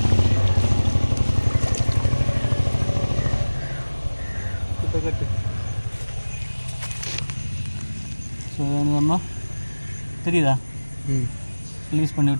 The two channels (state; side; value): inverted; both; correlation -1.00